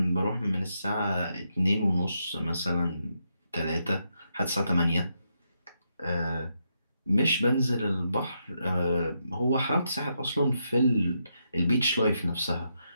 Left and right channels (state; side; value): inverted; both; correlation -0.81